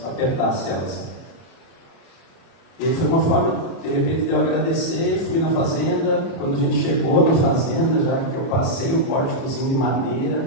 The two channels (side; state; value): right; late; 30 ms